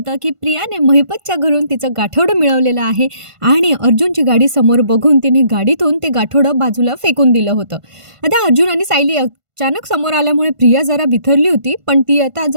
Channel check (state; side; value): late; left; 1.5 ms